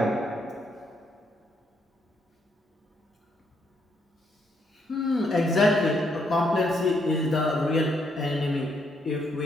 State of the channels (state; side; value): normal; both; correlation 0.74